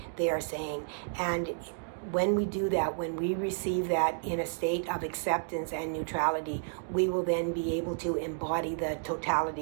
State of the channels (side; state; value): left; silent; digital silence